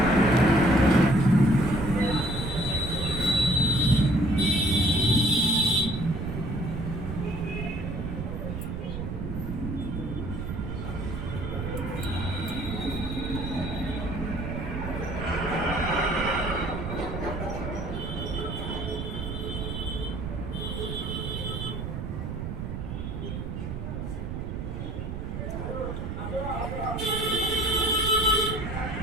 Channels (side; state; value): right; noise; rumble, 5 dB below the sound